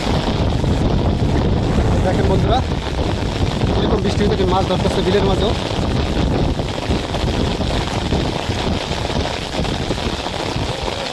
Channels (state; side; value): identical; both; correlation 1.00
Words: দেখেন বন্ধুরা এরকম বৃষ্টি থেকে মাছ ধরতেছে বিলের মাঝেও।